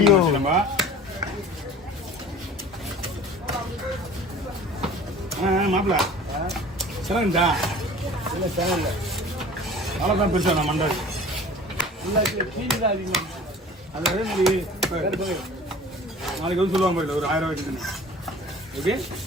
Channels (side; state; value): both; normal; correlation 0.44